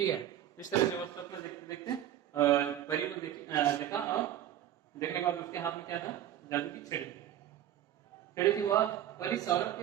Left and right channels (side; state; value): left; quieter; 11.6 dB